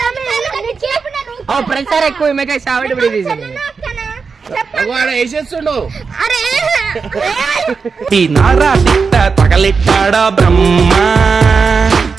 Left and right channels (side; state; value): left; quieter; 5.1 dB